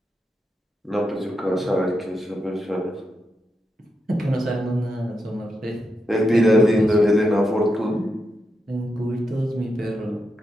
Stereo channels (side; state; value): both; normal; correlation 0.85